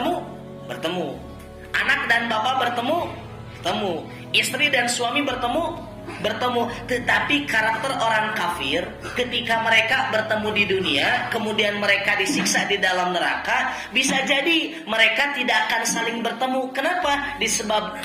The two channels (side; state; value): both; identical; correlation 1.00